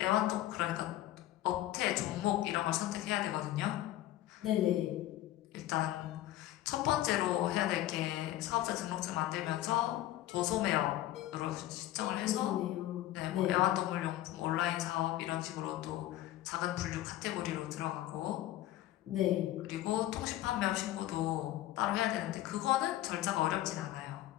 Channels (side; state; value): right; quieter; 14.5 dB